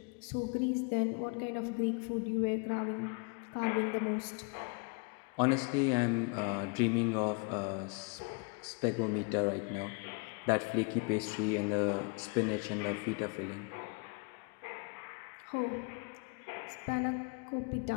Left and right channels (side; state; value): right; quieter; 33.0 dB